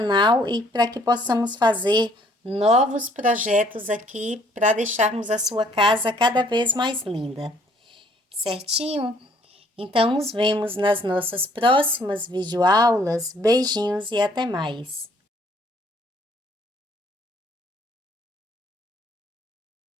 e para que possamos fazer novos projetos aqui para deixarmos a sua casa cada vez mais linda. Certinho? Então, nos vemos nas nossas próximas videoaulas. Beijinhos e até mais!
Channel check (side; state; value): both; normal; correlation 0.62